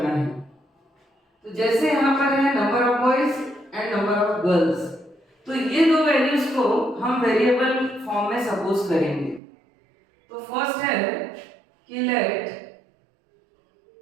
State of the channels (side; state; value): left; drops out; at 9.4 s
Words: है। तो जैसे यहाँ पर है number of boys and number of girls, तो ये दो वैल्यूज को हम वेरिएबल फॉर्म में सपोज करेंगे। तो फर्स्ट है कि let